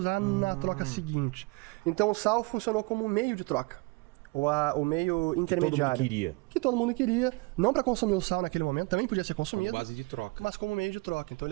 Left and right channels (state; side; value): quieter; left; 27.2 dB